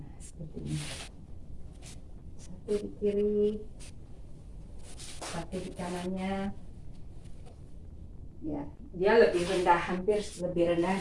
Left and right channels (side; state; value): both; identical; correlation 1.00